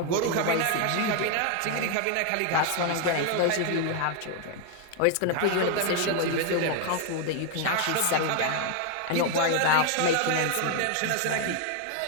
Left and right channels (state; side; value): different; both; correlation 0.00